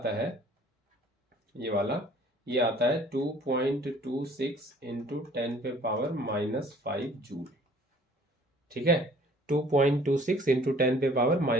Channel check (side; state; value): both; normal; correlation 0.54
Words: है ये वाला, ये आता है 2.26 इंटू 10 पे पावर -5 जूल, ठीक है, 2.26 इंटू 10 पे पावर